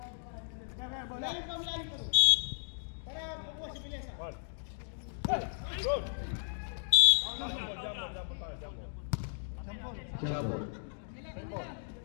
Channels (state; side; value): silent; right; digital silence